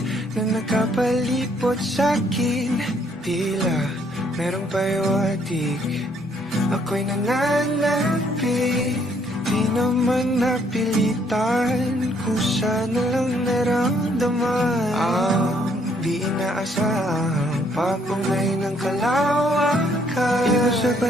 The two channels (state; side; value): normal; both; correlation 0.67